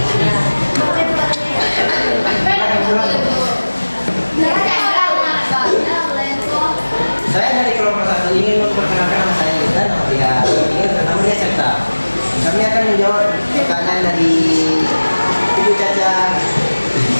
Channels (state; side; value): inverted; both; correlation -1.00